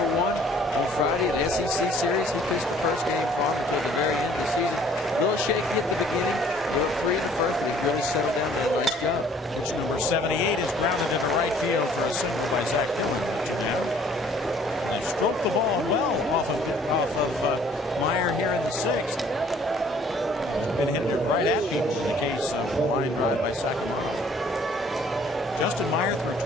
Friday in the SEC series. He pitched the first game for him until the very end of the season. A little shaky at the beginning, a little free in the first, but he really settled down and did a nice job. Pitch number 78 is grounded into right field for a single by Zach Dillon. They stroked the ball well off of Meyer here in the 6th. Been hitting it right at people in the case of a line drive by Sacramento. Justin Meyer threw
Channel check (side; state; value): both; normal; correlation 0.57